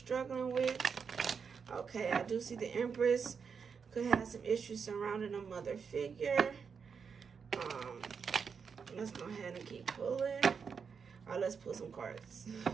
with? Okay, I do see the Empress could have some issues surrounding a mother figure. Let's go ahead and keep pulling. All right, let's pull some cards.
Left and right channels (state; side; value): quieter; left; 6.1 dB